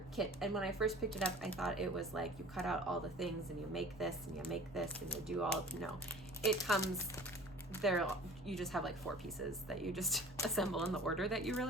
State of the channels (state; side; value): normal; both; correlation 0.44